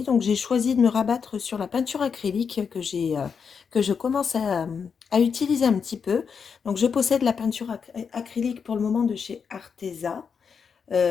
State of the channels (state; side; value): quieter; right; 6.3 dB